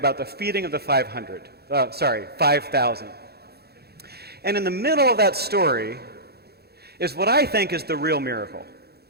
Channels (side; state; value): left; late; 0.46 ms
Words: the feeding of the 5,000. And in the middle of that story is what I think is the real miracle.